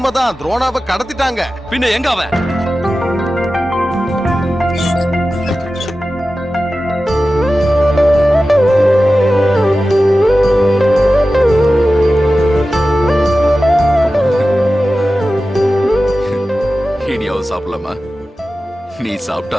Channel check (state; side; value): normal; both; correlation 0.94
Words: துரோணாவை கடத்திட்டாங்க. பின்ன எங்க அவன்? இனியாவது சாப்பிடலாமா? நீ